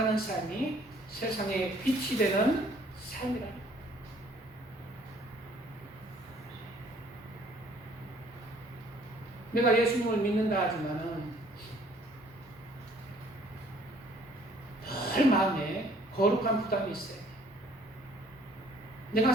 삶이 세상에 빛이 되는 삶이랍니다. 내가 예수님을 믿는다 하지만은 늘 마음에 거룩한 부담이 있어요. 내가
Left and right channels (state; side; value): normal; both; correlation 0.59